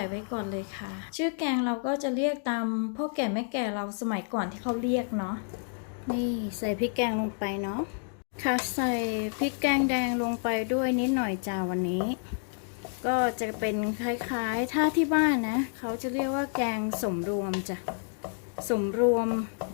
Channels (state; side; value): silent; right; 58 dB below the other